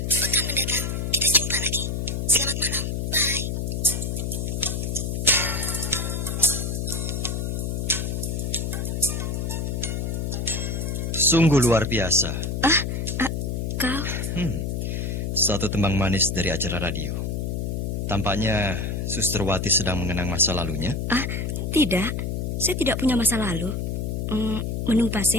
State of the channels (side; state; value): left; noise; hum, 1 dB below the sound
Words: pekan mendatang kita jumpa lagi. Selamat malam, bye. Sungguh luar biasa. Kau? Satu tembang manis dari acara radio. Tampaknya Suster Wati sedang mengenang masa lalunya. Tidak. Saya tidak punya masa lalu. Menunggu